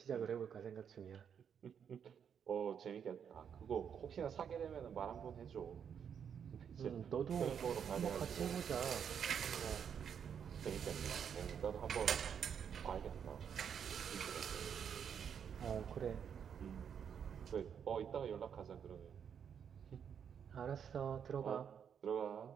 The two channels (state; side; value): quieter; left; 7.8 dB